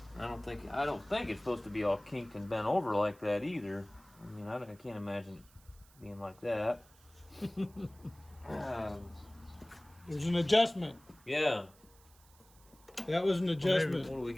don't think it's supposed to be all kinked and bent over like that either. I mean, I can't imagine it being like that. There's an adjustment. Yeah. That was an adjustment. What do we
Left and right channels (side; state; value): right; noise; hiss, 27 dB below the sound